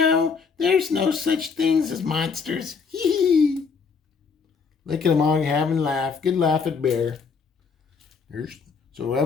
there's no such things as monsters? Hee hee. Look at them all having a laugh. Good laugh at Bear. So that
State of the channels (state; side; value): quieter; right; 5.4 dB